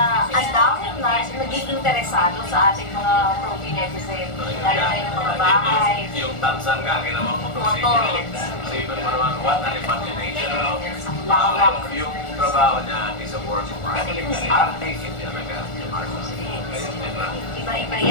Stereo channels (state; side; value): late; right; 1.4 ms